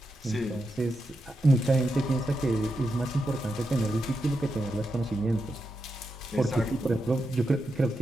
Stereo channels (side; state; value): both; normal; correlation 0.86